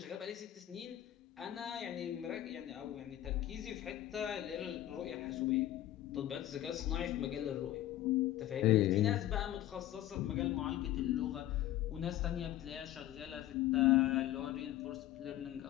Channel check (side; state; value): right; quieter; 13.6 dB